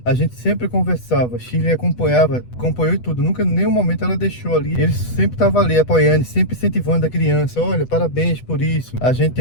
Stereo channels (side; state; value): right; late; 8.1 ms